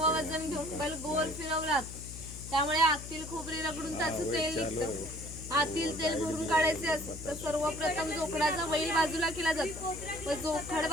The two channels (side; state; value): left; noise; hum, 11 dB below the sound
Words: वजन घेऊन बैल गोल फिरवला जातो. त्यामुळे आतील खोबरे रगडून त्याचं तेल निघतं. आतील तेल भरून काढायचे असते तर सर्वप्रथम जोखडाचा बैल बाजूला केला जातो व जोखड